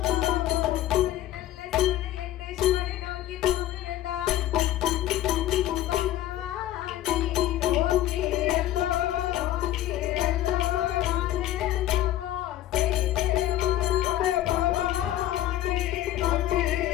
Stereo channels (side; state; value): right; quieter; 13.5 dB